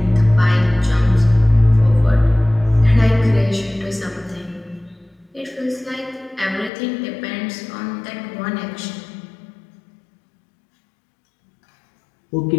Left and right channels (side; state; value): right; drops out; at 6.7 s